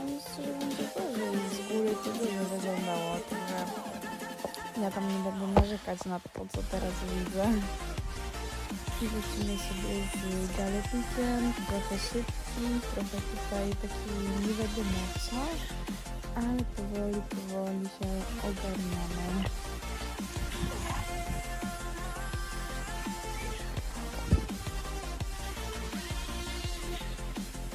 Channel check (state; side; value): identical; both; correlation 1.00